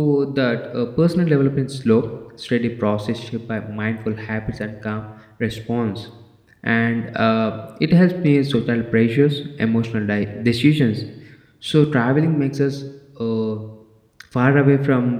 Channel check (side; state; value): both; identical; correlation 1.00